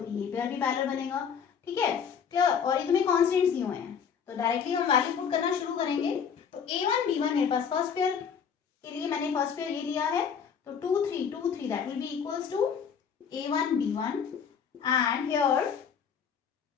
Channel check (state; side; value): quieter; right; 7.1 dB